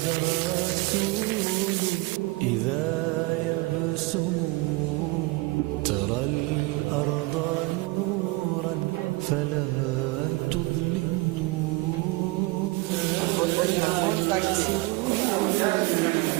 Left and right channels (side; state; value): left; quieter; 23.3 dB